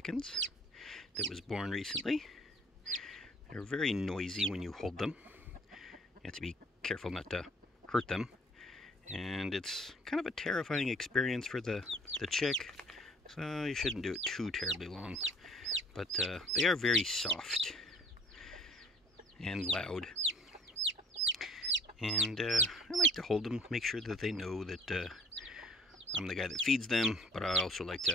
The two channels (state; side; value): normal; both; correlation 0.55